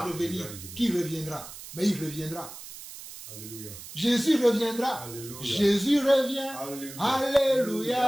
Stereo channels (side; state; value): right; noise; hiss, 14 dB below the sound